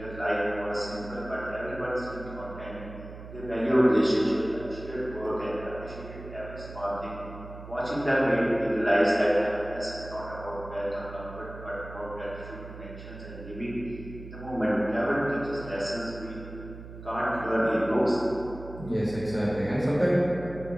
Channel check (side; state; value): right; noise; hum, 13 dB below the sound